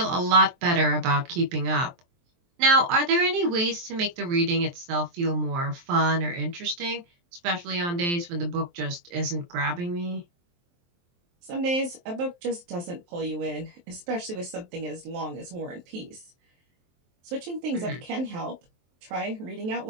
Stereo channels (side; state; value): left; late; 23 ms